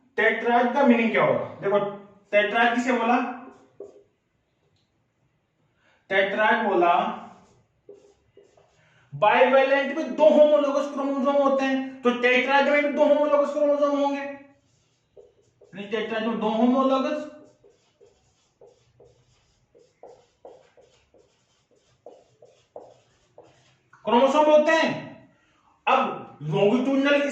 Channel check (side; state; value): both; identical; correlation 1.00